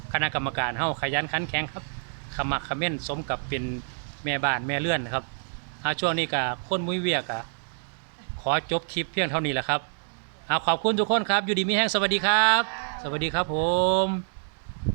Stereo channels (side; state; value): left; silent; digital silence